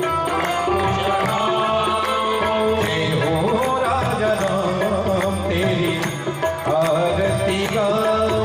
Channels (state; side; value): identical; both; correlation 1.00